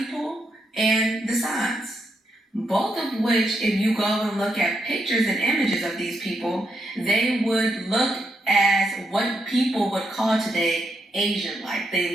and the Sans. Both of which, if you go and look at pictures and images of these people, they would look as what people would call today Asian-like.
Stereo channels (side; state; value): both; normal; correlation 0.80